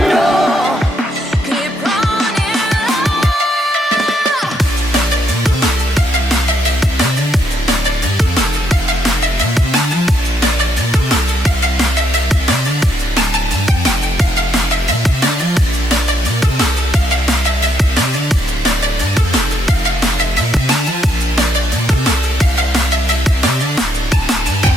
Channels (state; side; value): normal; both; correlation 0.74